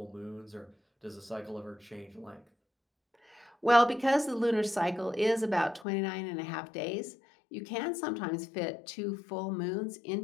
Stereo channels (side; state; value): right; drops out; at 5.9 s